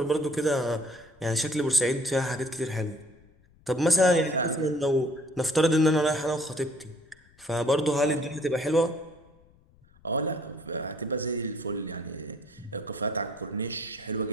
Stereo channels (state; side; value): noise; left; rumble, 30 dB below the sound